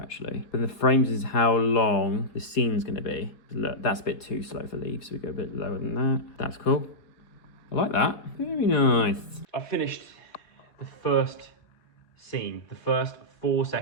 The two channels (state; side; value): late; right; 4.3 ms